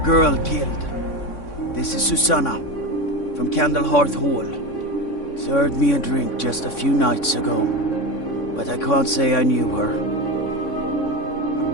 killed. This is Susanna, from Candlehearth Hall. Served me a drink just a few nights ago, but I can't say I knew her.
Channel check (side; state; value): right; late; 3.6 ms